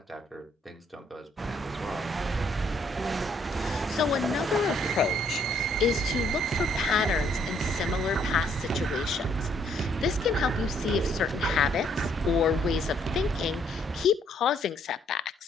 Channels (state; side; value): normal; both; correlation 0.67